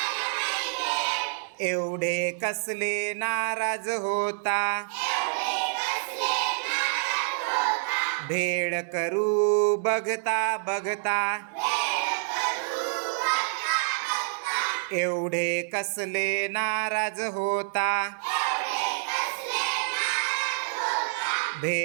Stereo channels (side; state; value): left; silent; digital silence